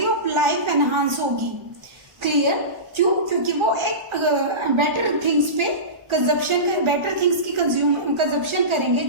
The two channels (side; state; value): left; late; 1.4 ms